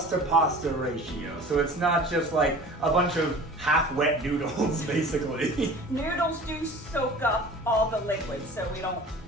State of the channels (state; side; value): normal; both; correlation 0.42